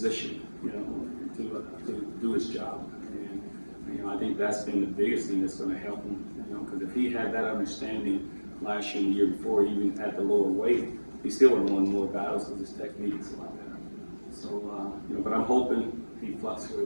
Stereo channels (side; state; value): both; inverted; correlation -1.00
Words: to do his job. And I think that's been the biggest thing that's going to help him, because if he had that understanding last year and the year before, even at the lower weight, he still would have won more battles because his technique is a lot better. So, but I'm hoping he